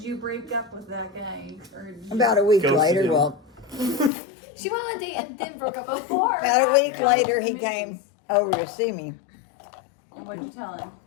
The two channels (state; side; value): drops out; right; at 4.1 s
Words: you break up with that guy? Or did you- About a week Ghosted later, him. well, She went on a date and then broke up with him. Before. about a week later, he came over to see me. And what'd you tell him?